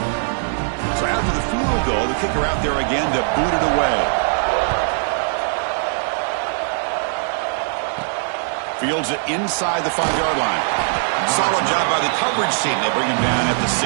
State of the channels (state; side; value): silent; left; 65 dB below the other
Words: So after the field goal, the kicker out there again to boot it away. Fields it inside the 5-yard line. Solid job by the coverage team. They bring him down at the